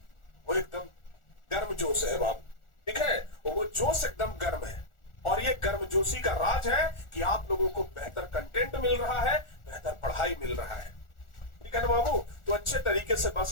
वो एकदम गर्म जोश है बाबू। ठीक है, वो जोश एकदम गर्म है। और ये गर्मजोशी का राज है कि आप लोगों को बेहतर कंटेंट मिल रहा है, बेहतर पढ़ाई मिल रहा है। ठीक है ना बाबू? तो अच्छे तरीके से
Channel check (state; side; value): late; right; 1.4 ms